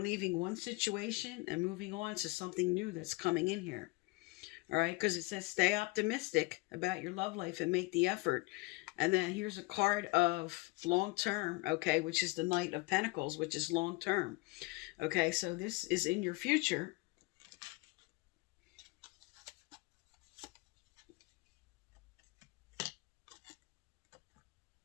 leaving one situation and moving on to something new that's coming in here. All right, because it says stay optimistic about your love life and make the effort. And then here's a card of long term, okay, which is the Knight of Pentacles, which is long term. Okay, so this is in your future.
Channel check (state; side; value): quieter; right; 24.1 dB